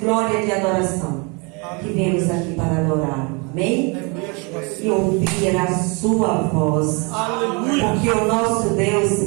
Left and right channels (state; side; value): quieter; left; 31.0 dB